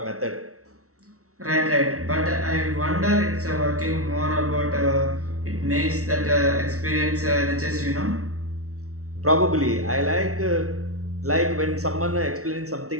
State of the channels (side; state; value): left; late; 0.64 ms